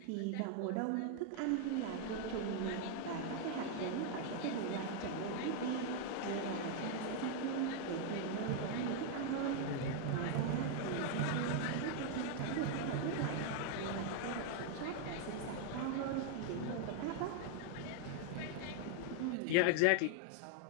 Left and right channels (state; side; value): different; both; correlation 0.00